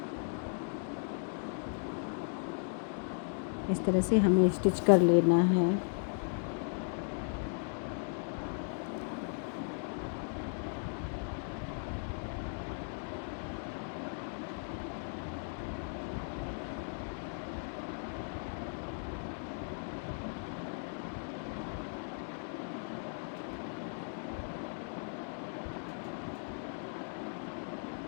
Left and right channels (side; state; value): right; silent; 53 dB below the other